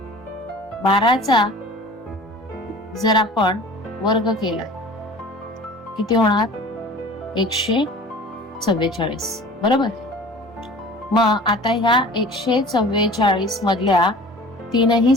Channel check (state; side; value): normal; both; correlation 0.43